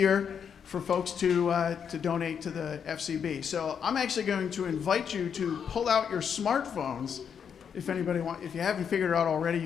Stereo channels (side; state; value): right; quieter; 7.4 dB